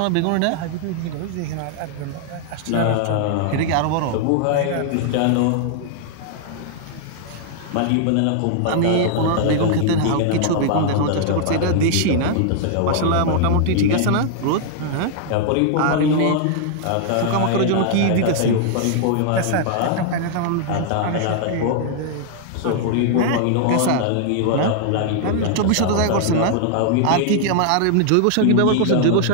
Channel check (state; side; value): different; both; correlation 0.00